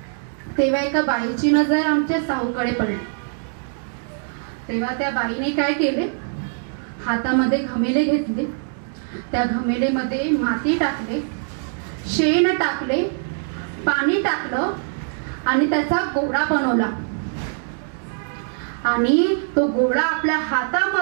तेव्हा एका बाईची नजर आमच्या साहूकडे पडली. तेव्हा त्या बाईने काय केले, हातामध्ये घमेले घेतले, त्या घमेलेमध्ये माती टाकले, शेण टाकले, पाणी टाकलं आणि त्याचा गोळा बनवला आणि तो गोळा आपल्या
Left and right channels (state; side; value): silent; left; 64 dB below the other